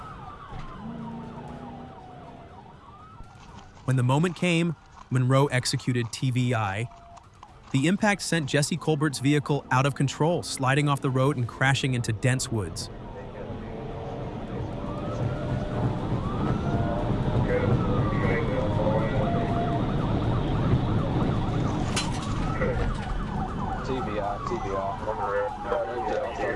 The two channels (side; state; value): both; identical; correlation 1.00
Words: When the moment came, Monroe executed TVI. The impact sent Jesse Colbert's vehicle out of control, sliding off the road and crashing into dense woods.